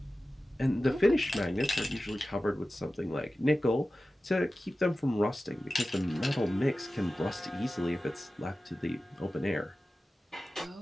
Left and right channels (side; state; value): both; normal; correlation 0.95